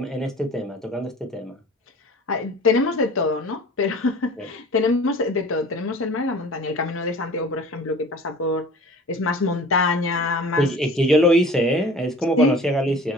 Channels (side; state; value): both; normal; correlation 0.43